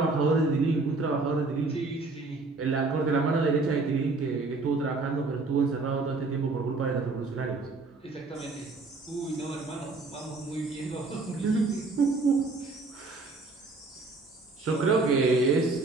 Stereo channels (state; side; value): quieter; left; 3.7 dB